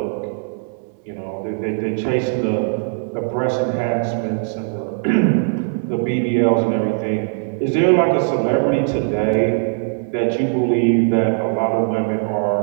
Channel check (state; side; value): silent; left; 66 dB below the other